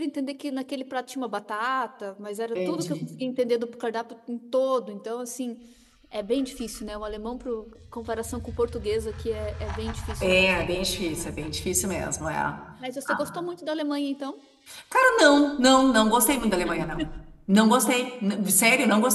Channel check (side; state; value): both; identical; correlation 1.00